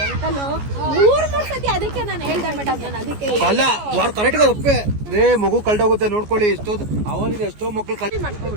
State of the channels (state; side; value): late; left; 14 ms